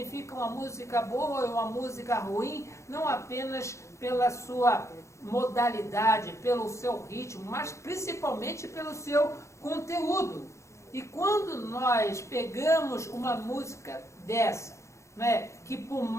uma música boa e uma música ruim, não apenas pela sua modalidade, pelo seu ritmo, mas principalmente pelo seu conteúdo. E quando nós pegamos uma música dessa, né, que por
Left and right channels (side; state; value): right; late; 0.14 ms